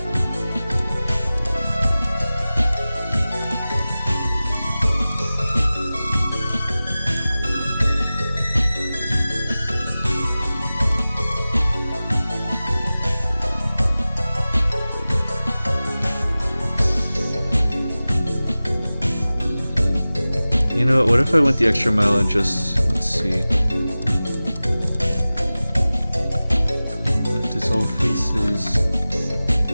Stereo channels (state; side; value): inverted; both; correlation -0.97